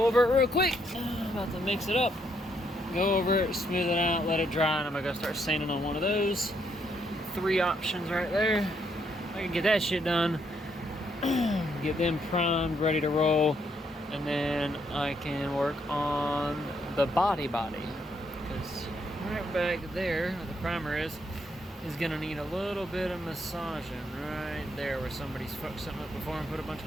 over it real quick. I'm about to mix it up, go over it, smooth it out, let it dry, and I'm gonna go start sanding on one of those. 3 options right there. I can get that shit done, get them primed, ready to roll, and then I can work on the body, because right back there where the primer is gonna need a little bit of massaging right there where somebody's fucked something up before and put a bunch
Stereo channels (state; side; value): normal; both; correlation 0.74